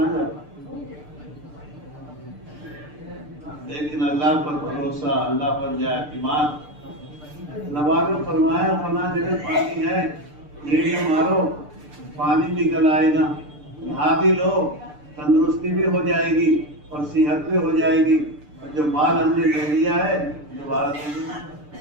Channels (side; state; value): left; late; 6.7 ms